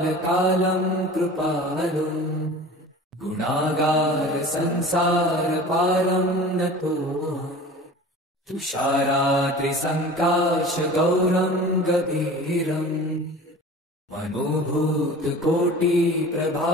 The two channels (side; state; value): both; normal; correlation 0.39